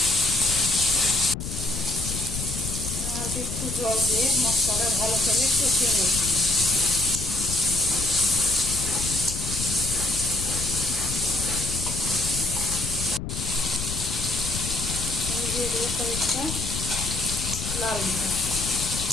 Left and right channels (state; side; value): noise; left; rumble, 6 dB below the sound